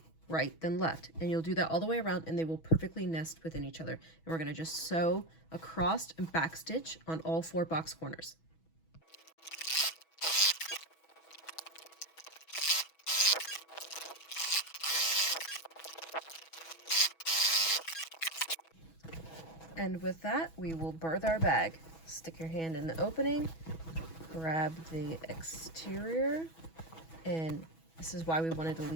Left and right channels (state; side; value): late; right; 6.2 ms